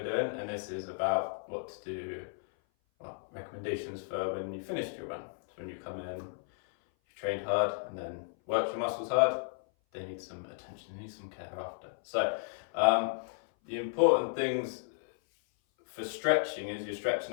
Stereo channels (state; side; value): silent; right; 55 dB below the other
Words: doing, and this is about what to do, recommendations for when you finished your run. So when you come in, you've trained hard and then worked your muscles hard, they need some attention, they need some care after. So the important things for stretching is you're